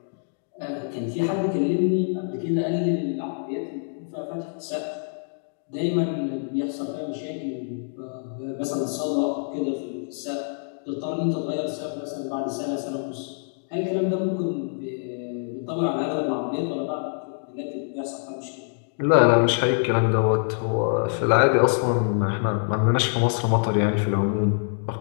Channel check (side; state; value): right; silent; digital silence